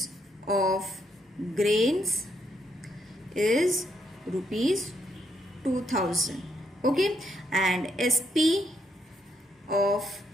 of grains is rupees 2000. Okay, and SP of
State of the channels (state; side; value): normal; both; correlation 0.76